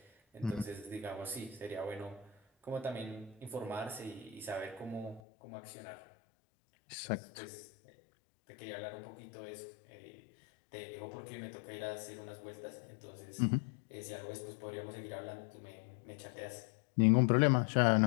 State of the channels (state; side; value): drops out; right; at 5.2 s